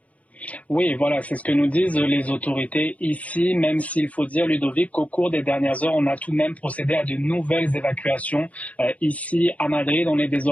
Oui, voilà, c'est ce que nous disent les autorités ici, même s'il faut dire, Ludovic, qu'au cours des dernières heures, on a tout de même procédé à de nouvelles évacuations. Ici, à Madrid, on est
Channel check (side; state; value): right; late; 0.067 ms